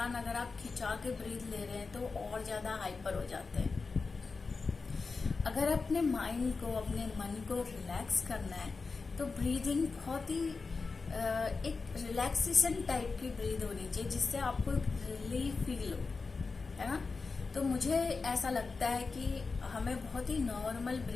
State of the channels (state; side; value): quieter; right; 4.3 dB